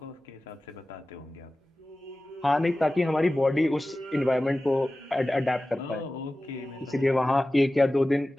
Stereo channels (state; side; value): normal; both; correlation 0.96